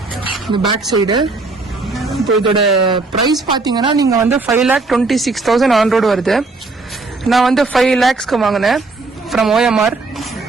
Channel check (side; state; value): left; quieter; 3.6 dB